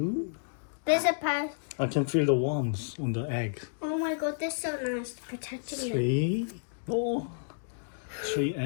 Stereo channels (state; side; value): silent; right; digital silence